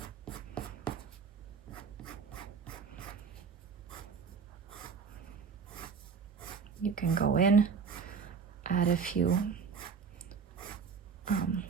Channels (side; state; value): left; quieter; 5.9 dB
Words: You can go in, add a few